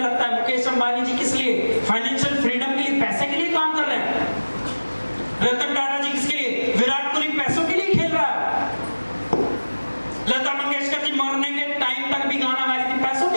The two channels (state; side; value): inverted; both; correlation -1.00